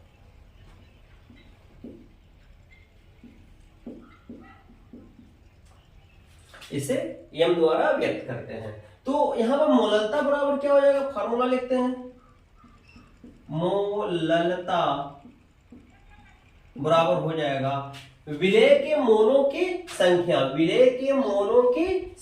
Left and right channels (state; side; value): identical; both; correlation 1.00